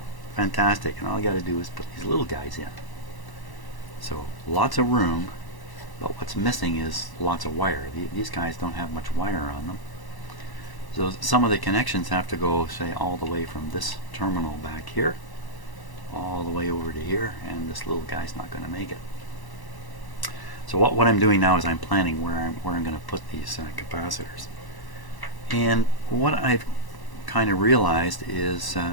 Fantastic. And all I got to do is put these little guys in. So lots of room, but what's missing is lots of wire. These guys don't have much wire on them. So some of the connections have to go, say, all the way from this terminal back here all the way over to here, and this little guy's not going to make it. So what I'm doing now is I'm planning where I'm going to put these capacitors. And what I've kind of realized is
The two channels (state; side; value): late; right; 1.0 ms